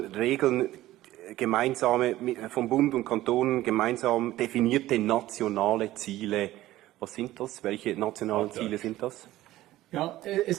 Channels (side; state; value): left; quieter; 15.5 dB